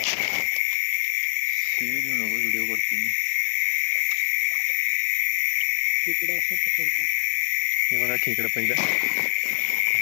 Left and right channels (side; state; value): right; silent; 62 dB below the other